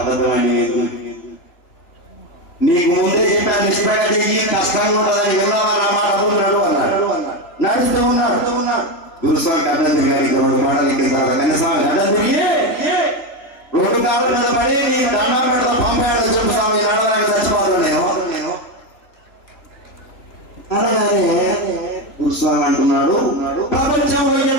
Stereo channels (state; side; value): late; right; 3.4 ms